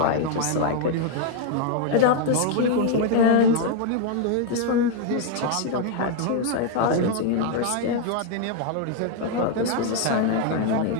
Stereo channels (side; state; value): both; different; correlation 0.00